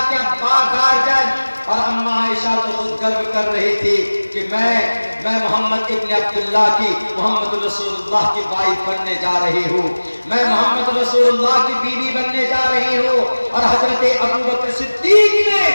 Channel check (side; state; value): both; inverted; correlation -1.00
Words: کے ابا گارجن اور اما عائشہ تو خود گرو کر رہی تھی کہ میں محمد ابن عبداللہ کی محمد رسول اللہ کی وائف بننے جا رہی ہوں، میں محمد رسول اللہ کی بیوی بننے جا رہی ہوں۔ اور حضرت ابوبکر صدیق نے